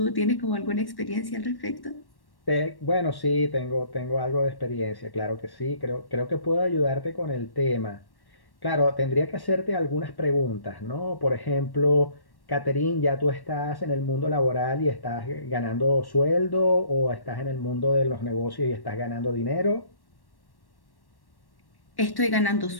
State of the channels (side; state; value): right; late; 1.1 ms